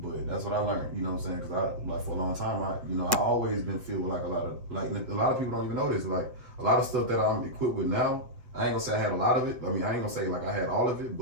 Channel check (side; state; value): left; late; 8.2 ms